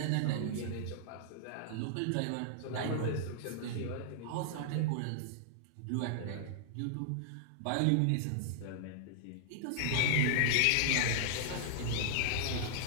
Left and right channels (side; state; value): both; different; correlation -0.01